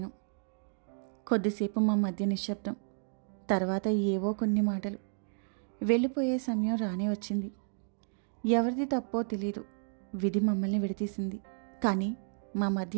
కొద్దిసేపు మా మధ్య నిశ్శబ్దం. తర్వాత ఏవో కొన్ని మాటలు. వెళ్ళిపోయే సమయం రానే వచ్చింది. ఎవరిది తప్పో తెలీదు. విధి మమ్మల్ని విడతీసింది. కానీ మా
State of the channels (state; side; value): silent; left; digital silence